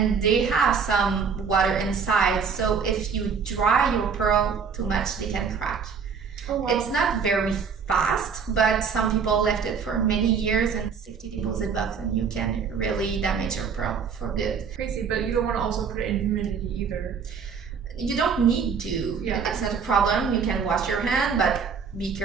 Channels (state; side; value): quieter; left; 6.1 dB